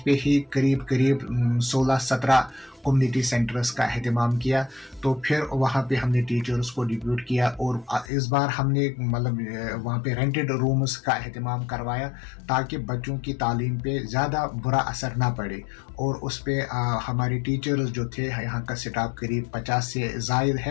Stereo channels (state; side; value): drops out; right; at 8.1 s